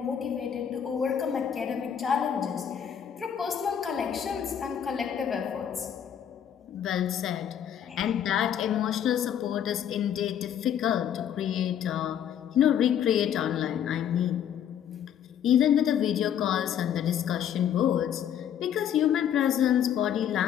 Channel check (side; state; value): right; quieter; 9.3 dB